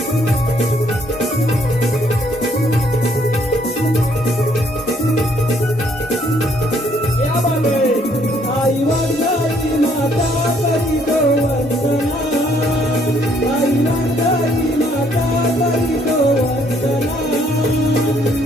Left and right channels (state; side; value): normal; both; correlation 0.66